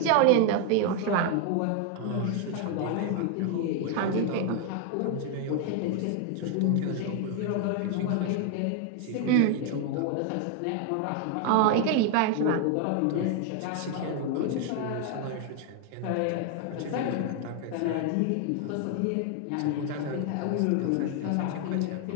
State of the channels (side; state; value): both; different; correlation 0.01